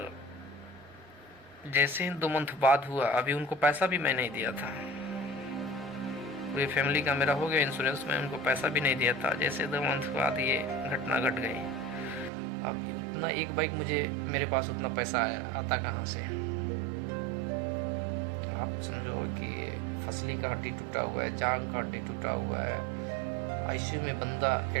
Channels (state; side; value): drops out; left; at 12.3 s